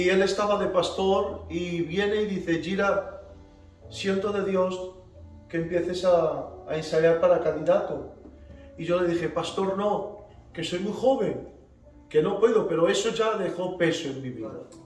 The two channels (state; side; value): identical; both; correlation 1.00